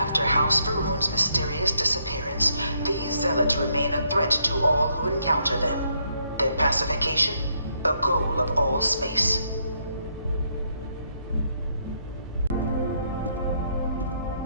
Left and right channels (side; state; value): both; inverted; correlation -0.74